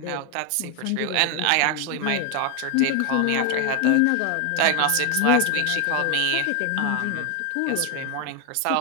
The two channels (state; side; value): different; both; correlation 0.01